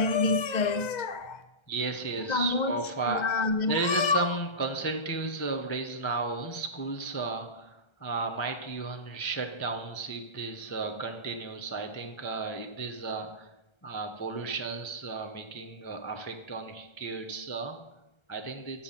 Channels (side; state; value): right; late; 1.3 ms